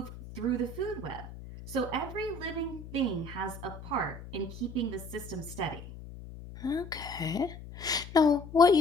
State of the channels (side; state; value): left; noise; hum, 13 dB below the sound